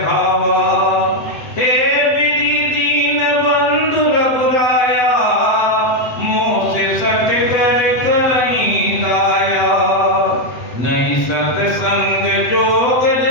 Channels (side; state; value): right; late; 8.0 ms